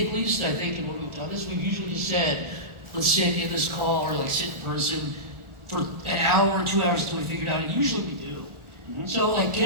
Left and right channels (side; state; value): left; late; 1.4 ms